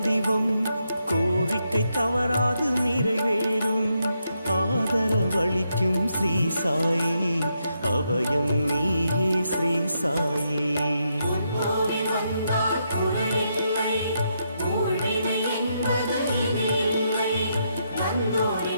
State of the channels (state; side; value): inverted; both; correlation -0.80